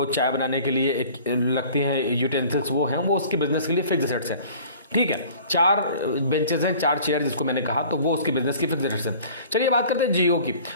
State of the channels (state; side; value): inverted; both; correlation -0.48